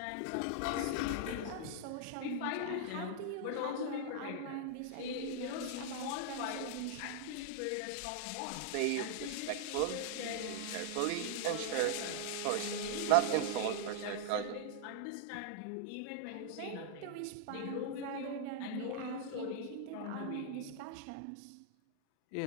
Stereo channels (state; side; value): different; both; correlation -0.01